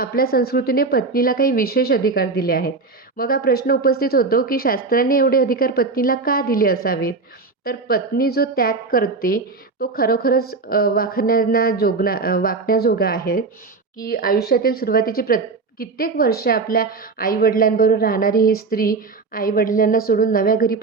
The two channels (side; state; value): left; quieter; 4.1 dB